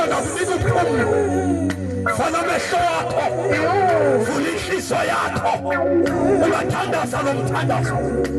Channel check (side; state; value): both; identical; correlation 1.00